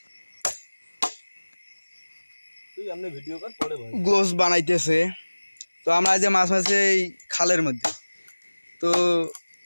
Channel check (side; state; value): both; inverted; correlation -1.00